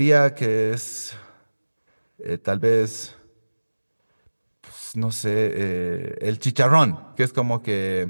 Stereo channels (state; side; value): inverted; both; correlation -1.00